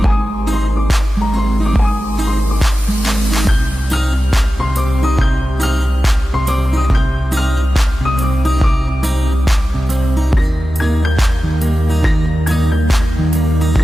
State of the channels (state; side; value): normal; both; correlation 0.93